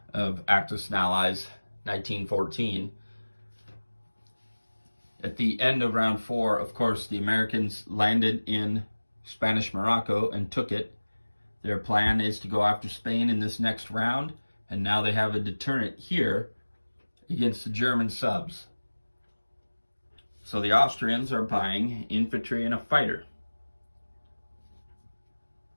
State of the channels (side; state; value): both; inverted; correlation -1.00